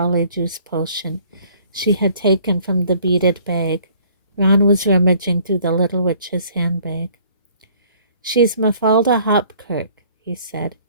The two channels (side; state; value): both; inverted; correlation -0.57